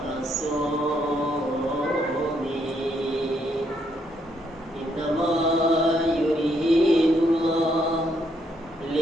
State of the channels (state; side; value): normal; both; correlation 0.73